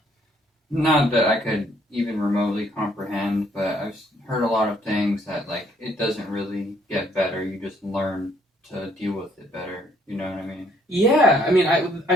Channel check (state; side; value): normal; both; correlation 0.66